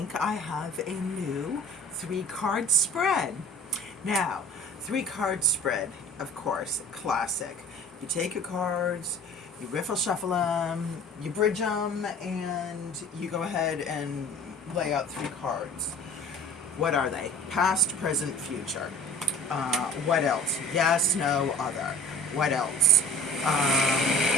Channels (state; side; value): normal; both; correlation 0.44